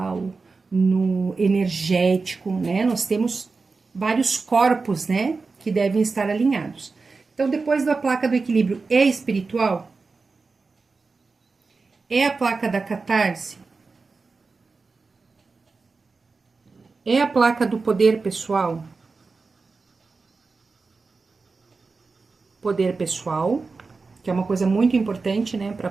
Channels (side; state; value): left; quieter; 4.2 dB